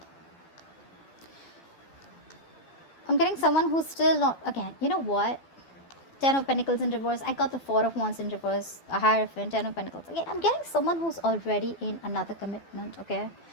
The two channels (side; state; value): right; late; 12 ms